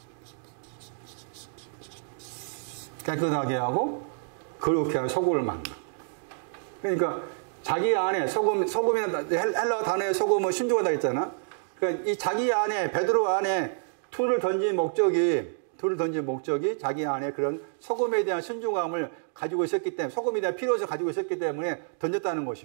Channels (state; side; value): silent; left; digital silence